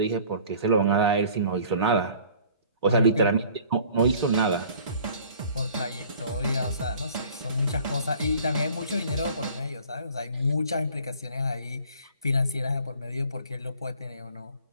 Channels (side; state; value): both; inverted; correlation -0.51